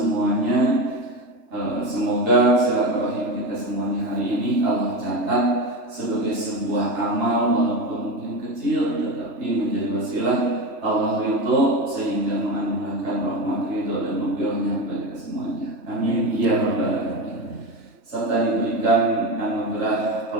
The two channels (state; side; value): late; left; 3.3 ms